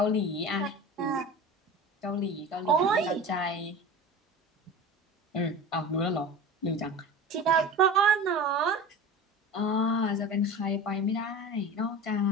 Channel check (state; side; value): normal; both; correlation 0.34